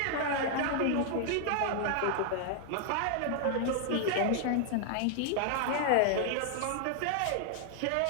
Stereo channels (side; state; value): both; different; correlation 0.00